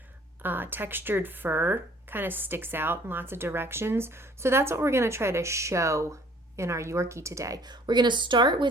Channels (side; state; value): both; normal; correlation 0.55